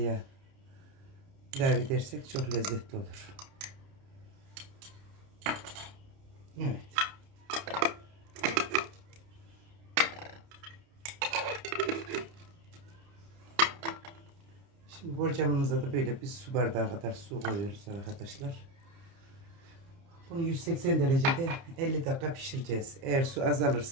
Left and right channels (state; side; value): late; left; 30 ms